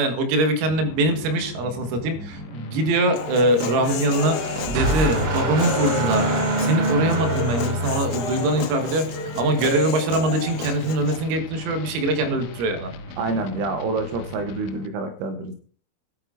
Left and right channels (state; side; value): late; left; 25 ms